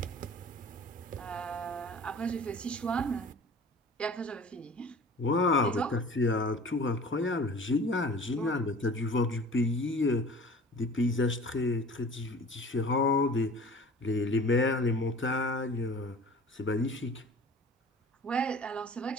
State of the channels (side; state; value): both; normal; correlation 0.43